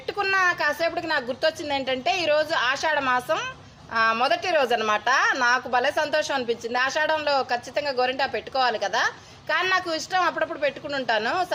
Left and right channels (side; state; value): both; identical; correlation 1.00